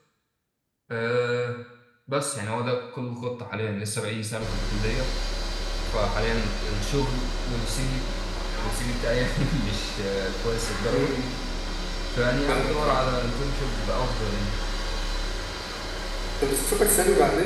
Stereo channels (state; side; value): identical; both; correlation 1.00